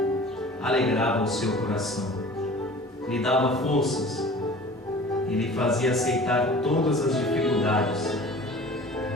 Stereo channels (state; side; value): normal; both; correlation 0.43